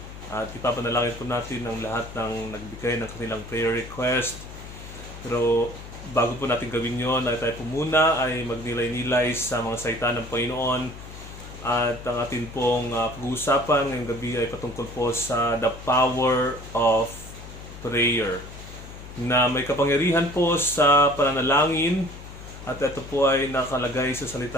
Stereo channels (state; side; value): noise; left; hum, 14 dB below the sound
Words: at ipapanalangin po natin ang lahat ng nagbigay ng kanilang prayer request. Pero bago po natin gawin yon, ay tayo po muna ay magnilay-nilay sa mga salita ng Panginoon. At ang ating pong pag-uusapan ngayong gabi ay patungkol po sa the power of prayer, na may kapangyarihan po sa pananalangin, at ito po ay nakalagay sa